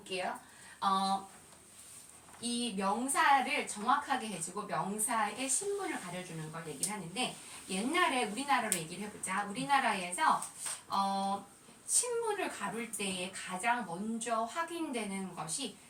이 명사를 정확하게 해주고 명사의 신분을 가려주는 걸 얘기를 하는데 옛날에 우리나라로 얘기를 해보자. 우리나라에서 신분을 가를 때에 가장 먼저 확인되는 것이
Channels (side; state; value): both; identical; correlation 1.00